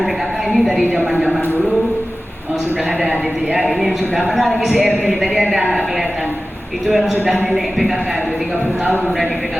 PKK ini dari zaman-zaman dulu sudah ada gitu ya. Ini yang sudah mana lagi CRT tadi ada nggak kelihatan. Itu yang sudah nenek PKK itu 30 tahun udah di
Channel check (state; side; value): normal; both; correlation 0.96